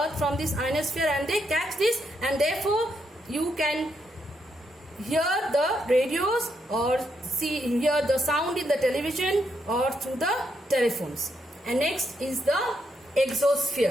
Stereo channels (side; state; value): both; normal; correlation 0.79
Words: from this ionosphere, and they catch this, and therefore you can hear the radios or hear the sound in the television or through the telephones. And next is the